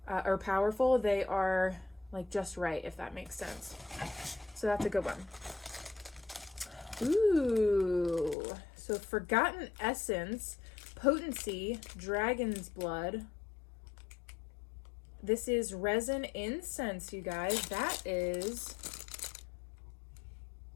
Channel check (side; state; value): right; drops out; at 8.3 s